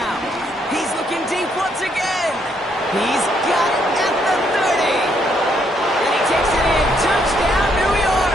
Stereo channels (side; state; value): both; normal; correlation 0.73